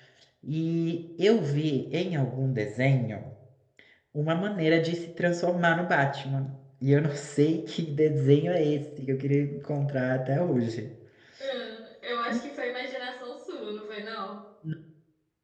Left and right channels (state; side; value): identical; both; correlation 1.00